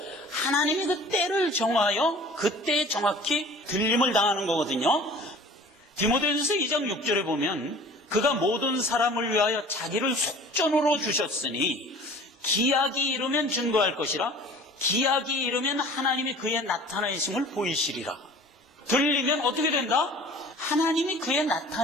하나님이 그 때를 정하여 그때에 정확히 들림을 당하는 거거든요. 디모데전서 2장 6절에 보면 그가 모든 사람을 위하여 자기를 속전으로 주셨으니 기약이 이르면 증거할 것이라 기약이 이르면 하나님이 그의 나타내심을 보이시리라. 들리면 어떻게 된다? 하나님이 그의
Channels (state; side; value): normal; both; correlation 0.45